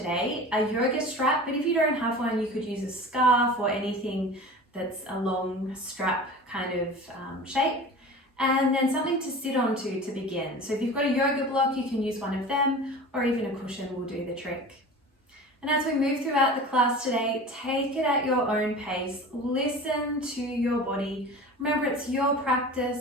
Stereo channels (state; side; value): normal; both; correlation 0.36